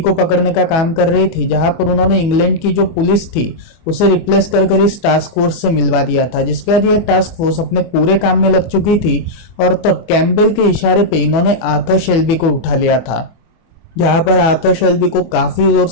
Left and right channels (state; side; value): late; right; 24 ms